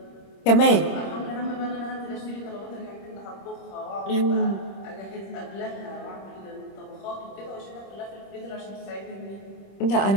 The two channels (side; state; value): right; late; 26 ms